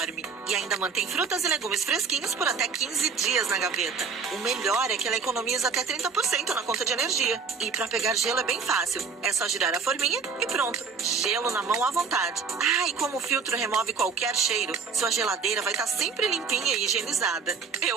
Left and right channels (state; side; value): quieter; left; 5.4 dB